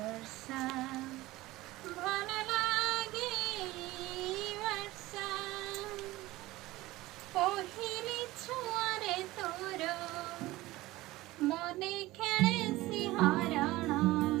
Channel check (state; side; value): quieter; left; 18.4 dB